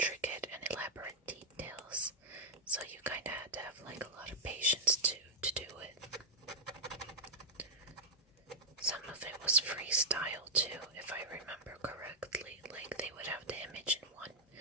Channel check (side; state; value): both; normal; correlation -0.07